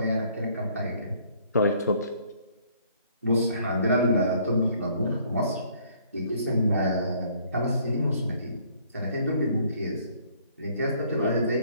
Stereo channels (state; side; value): inverted; both; correlation -0.62